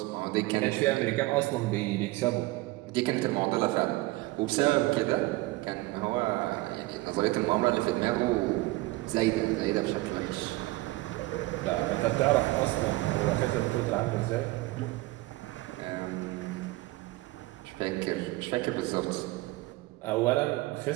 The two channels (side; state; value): left; quieter; 20.3 dB